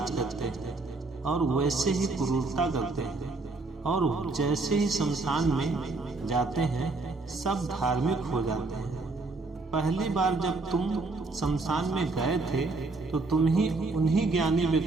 करते हैं और वैसे ही क्रूरता करते हैं। और जैसे ही शमशान में जाते हैं सब धार्मिक हो जाते हैं। पहली बार जब तुम शमशान में गए थे तो तुम ही उन्हीं ज्ञानी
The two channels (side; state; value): left; quieter; 3.5 dB